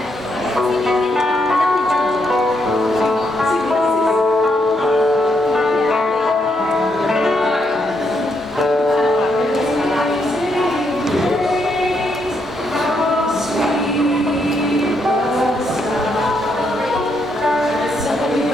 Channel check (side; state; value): both; normal; correlation 0.77